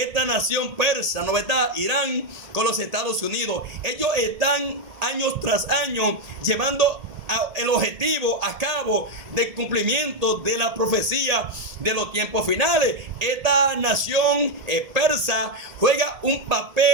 esta nación persa, ¿no verdad? Irán con los Estados Unidos. Ellos están años tras año llevando el objetivo a cabo del cumplimiento de la profecía de los tiempos finales. Esta nación persa juega un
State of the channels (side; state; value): left; late; 1.7 ms